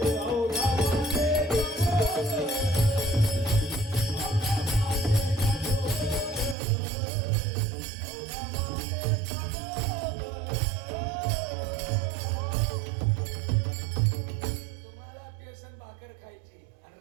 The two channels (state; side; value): drops out; left; at 6.6 s